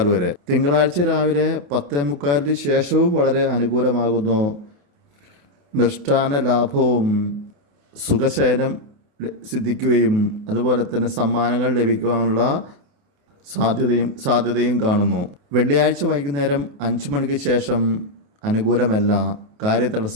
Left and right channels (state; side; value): late; left; 28 ms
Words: വരെ. തിങ്കളാഴ്ച രാവിലെ 10:45 ശേഷവും വളരെ അനുകൂലമാകുന്നു. മൃഷ്ടാന ലാഭവും സുഖശയനം സിദ്ധിക്കുകയും അതുപോലെ തന്നെ സമ്മാനങ്ങൾ ലഭിക്കുവാനുള്ള സാധ്യതയും കാണുന്നു. വെള്ളിയാഴ്ച വൈകുന്നേരം 5 മണിക്ക് ശേഷം അനുകൂലമല്ല.